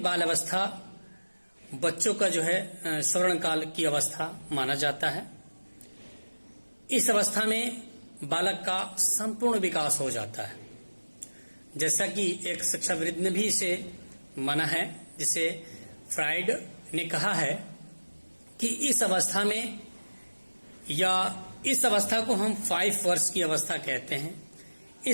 बाल अवस्था बच्चों का जो है स्वर्ण काल की अवस्था माना जाता है। इस अवस्था में बालक का संपूर्ण विकास हो जाता है, जैसा कि एक शिक्षाविद ने भी इसे माना है, जिसे फ्राइड ने कहा है कि इस अवस्था में या इस अवस्था को हम 5 वर्ष की अवस्था कहते हैं।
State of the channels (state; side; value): inverted; both; correlation -1.00